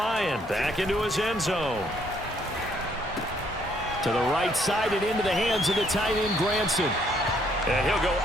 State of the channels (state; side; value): normal; both; correlation 0.68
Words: back into his end zone. To the right side and into the hands of the tight end, Granson. And he'll go